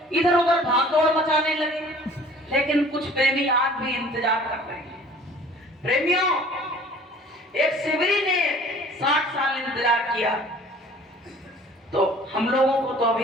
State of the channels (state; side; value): normal; both; correlation 0.50